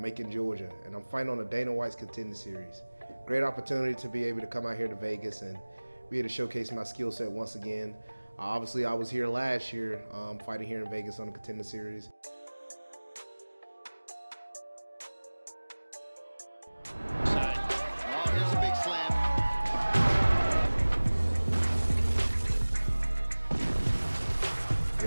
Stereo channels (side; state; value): both; inverted; correlation -1.00